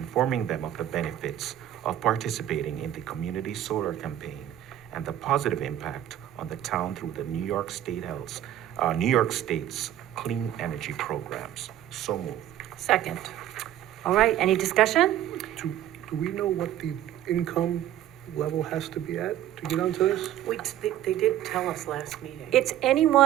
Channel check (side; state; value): left; quieter; 12.1 dB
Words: them of the benefits of participating in the community solar campaign and the positive impact on the town through the New York State's clean energy programs. So moved. Second. All right, any discussion? Do we know what the income level has to be at to get onto this? They did tell us last meeting. It's